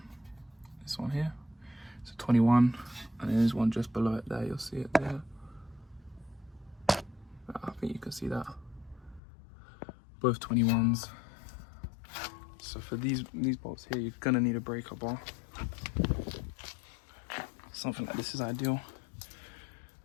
This one here. It's a 21, and then there's one just below it there. You'll see it there. I think you can see that. Both 21s. So for these bolts here, you're gonna need a breaker bar. Something like this is ideal.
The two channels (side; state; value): right; drops out; at 9.2 s